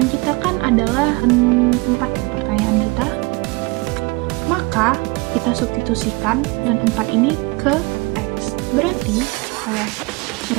kita kan adalah 4 pertanyaan kita. Maka kita substitusikan dan 4 ini ke X. Berarti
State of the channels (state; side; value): quieter; left; 26.2 dB